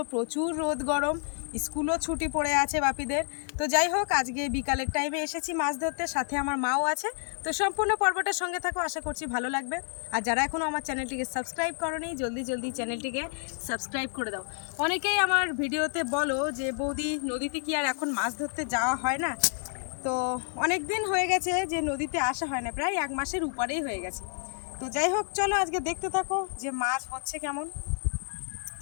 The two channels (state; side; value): silent; right; 56 dB below the other